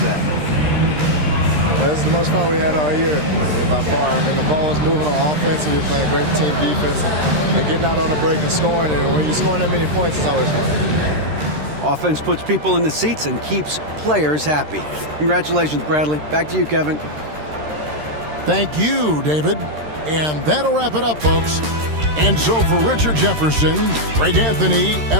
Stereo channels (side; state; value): left; late; 13 ms